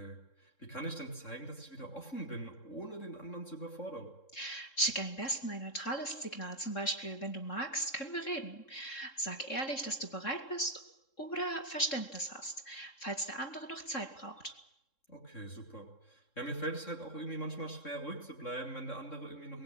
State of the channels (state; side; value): late; right; 3.7 ms